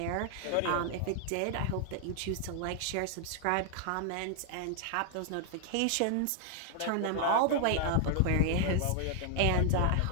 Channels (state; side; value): different; both; correlation 0.00